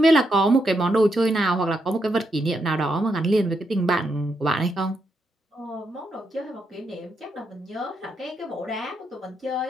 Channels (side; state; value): both; normal; correlation 0.81